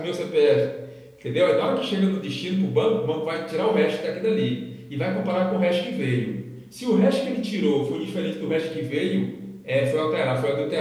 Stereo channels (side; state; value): both; identical; correlation 1.00